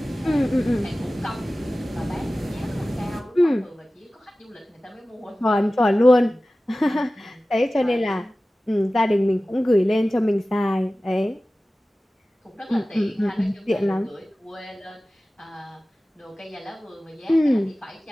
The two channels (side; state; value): both; normal; correlation 0.96